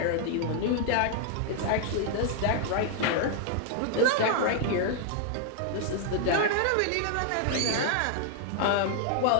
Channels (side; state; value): both; different; correlation 0.00